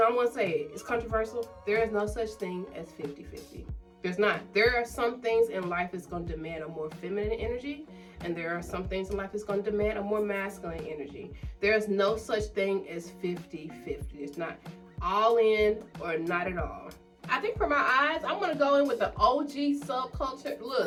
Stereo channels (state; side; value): identical; both; correlation 1.00